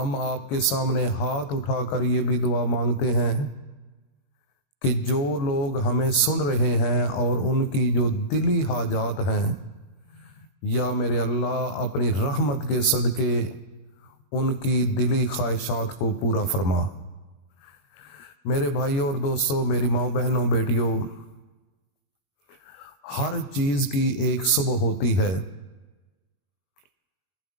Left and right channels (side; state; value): right; late; 21 ms